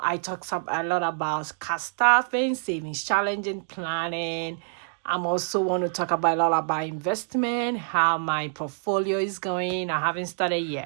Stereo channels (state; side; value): silent; left; digital silence